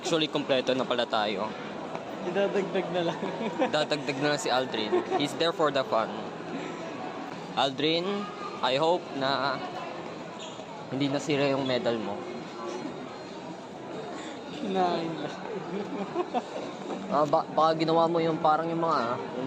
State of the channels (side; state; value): both; identical; correlation 1.00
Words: kompleto na pala tayo. Idadagdag na lang. Dadagdag na lang si Aldrin. He's there for the fun. Aldrin, I hope na hindi nasira yung medal mo. Kinain lang. Baka ginawa mo yung parang yung